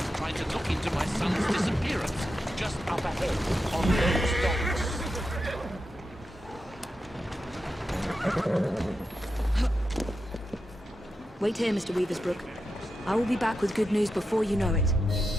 trying to look into my son's disappearance, just up ahead, on those docks. Wait here, Mr. Weaversbrook. I will be back with good news before you know it.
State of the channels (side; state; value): both; normal; correlation 0.88